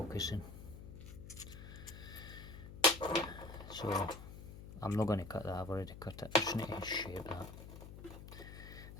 So I'm not going to cut that, I've already cut it. I just need to shape that.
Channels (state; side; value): noise; left; hum, 12 dB below the sound